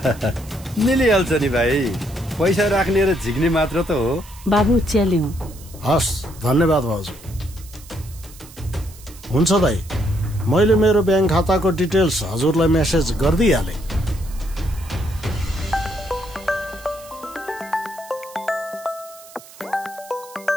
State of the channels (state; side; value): noise; right; hiss, 20 dB below the sound